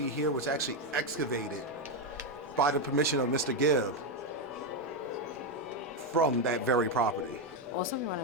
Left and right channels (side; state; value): both; normal; correlation 0.06